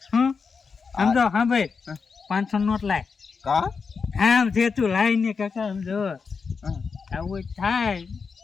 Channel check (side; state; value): right; quieter; 5.3 dB